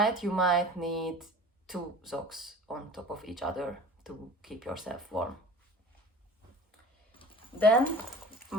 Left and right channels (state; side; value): normal; both; correlation 0.41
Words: you might need 2 socks on top of each other to keep yourself warm. Then